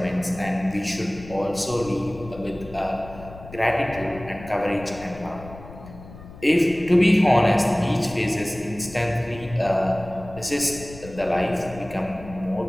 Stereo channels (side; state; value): left; noise; rumble, 16 dB below the sound